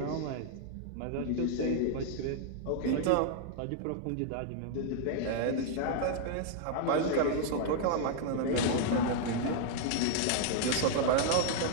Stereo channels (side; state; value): both; different; correlation -0.01